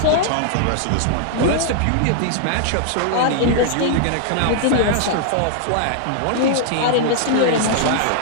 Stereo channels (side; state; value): both; different; correlation -0.01